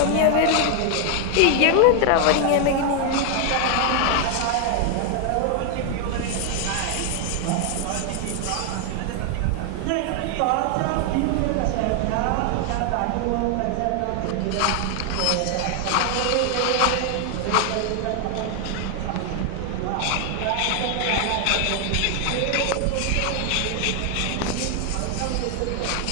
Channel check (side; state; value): both; different; correlation 0.00